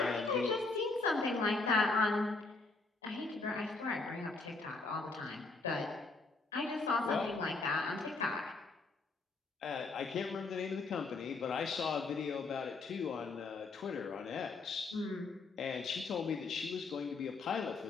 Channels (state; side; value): quieter; right; 3.7 dB